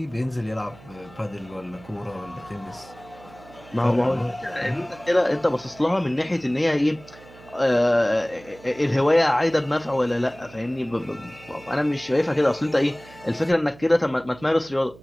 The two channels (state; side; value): noise; right; hum, 22 dB below the sound